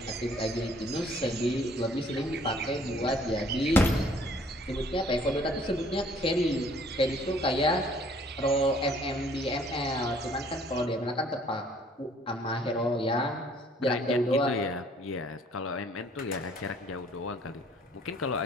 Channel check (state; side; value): normal; both; correlation 0.59